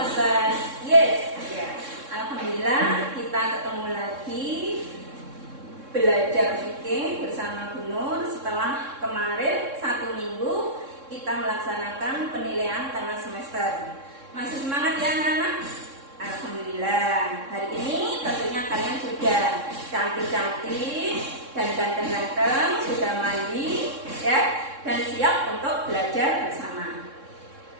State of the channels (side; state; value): left; late; 3.6 ms